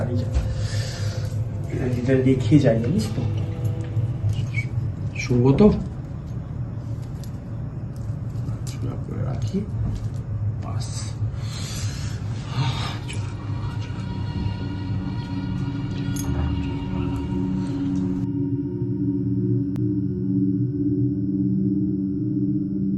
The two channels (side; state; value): both; identical; correlation 1.00